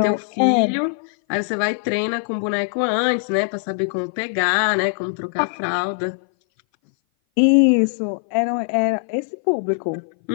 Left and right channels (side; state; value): right; silent; 59 dB below the other